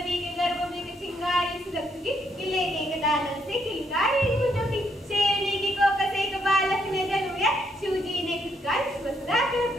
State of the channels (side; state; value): both; normal; correlation 0.74